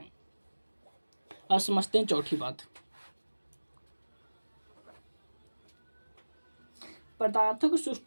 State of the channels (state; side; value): inverted; both; correlation -1.00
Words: अब समझते हैं चौथी बात। पदार्थों के